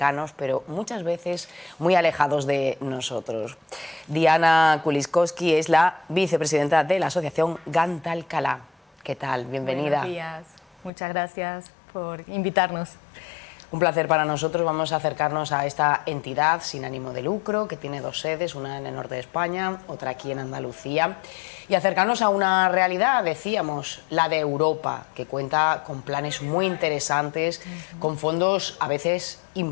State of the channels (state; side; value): drops out; right; at 10.9 s